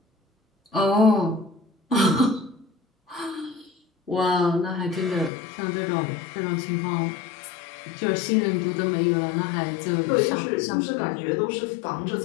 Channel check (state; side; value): drops out; right; at 5.3 s